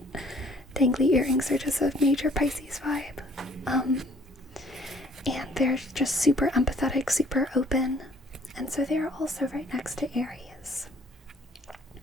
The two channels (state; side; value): normal; both; correlation 0.58